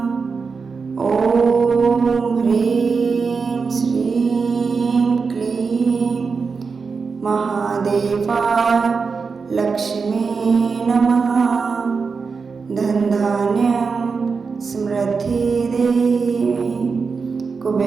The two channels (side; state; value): left; quieter; 5.0 dB